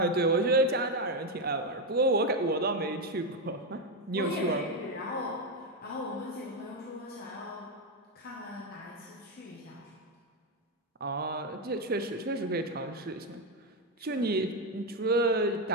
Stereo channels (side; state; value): both; normal; correlation 0.07